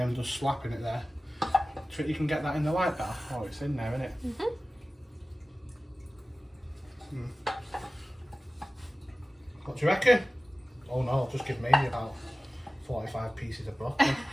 I'm just slapping it there. Do you think you can get that in the light bar? Oh, it's in there, isn't it? What do you reckon? Oh no, just give Maisie about 45 pieces of broccoli.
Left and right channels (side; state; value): both; normal; correlation 0.97